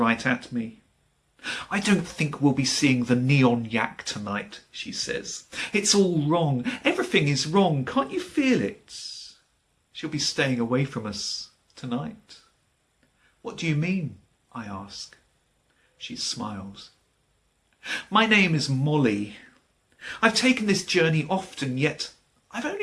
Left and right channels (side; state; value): both; identical; correlation 1.00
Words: at me. I don't think we'll be seeing the Neon Yak tonight, she says. It's all wrong. Everything is wrong. Can't you feel it? She'll be staying away from us tonight. What do you mean? I ask. She smiles. My name is Molly. I've taken this journey often, yet I've